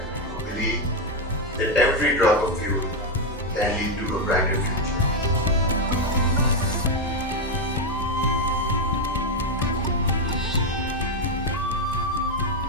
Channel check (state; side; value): normal; both; correlation 0.05